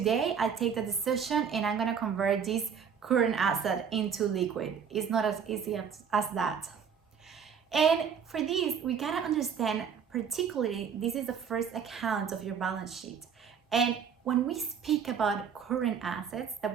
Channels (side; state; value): left; quieter; 7.1 dB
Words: I take the decision and I'm gonna convert this current asset into liquid. It's not as easy as that. And for this, we gotta understand, particularly, this is the first account of your balance sheet. And when we speak about current assets that